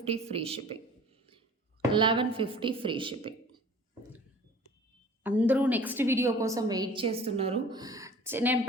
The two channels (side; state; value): both; normal; correlation 0.47